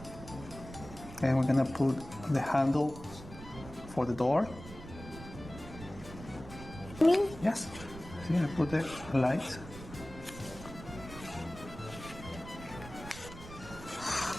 And we're gonna put the handle for the door. Me? Yes. See, I put the lights.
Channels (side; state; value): right; noise; rumble, 14 dB below the sound